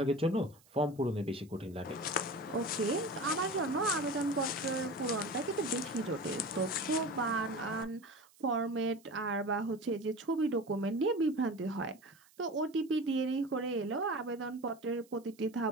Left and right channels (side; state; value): right; noise; hiss, 29 dB below the sound